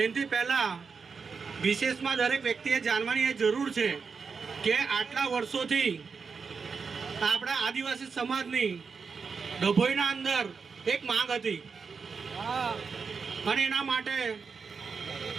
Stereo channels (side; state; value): left; quieter; 5.3 dB